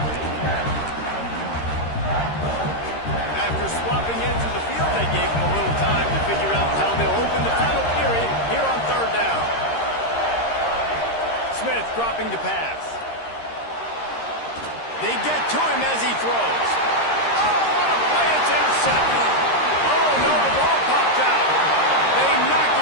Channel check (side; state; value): right; late; 13 ms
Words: After swapping into the field, they gave him a little time to figure out how they'll open the final period here on third down. Smith dropping to pass. They get to him as he throws. Oh, what a play! It's intercepted. Oh, no, the ball popped out. They knock